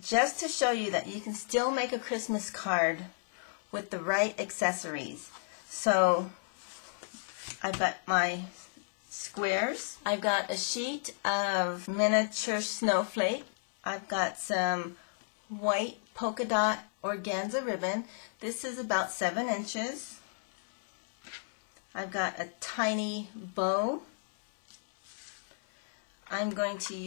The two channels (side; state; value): right; silent; 56 dB below the other